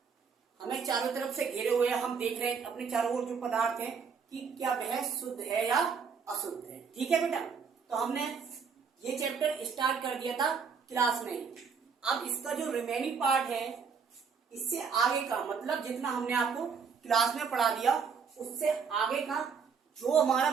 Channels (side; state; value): left; quieter; 6.0 dB